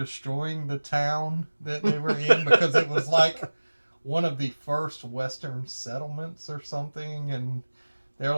the town that they were in because it was like one of the first Western settlements or something. And they're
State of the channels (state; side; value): inverted; both; correlation -1.00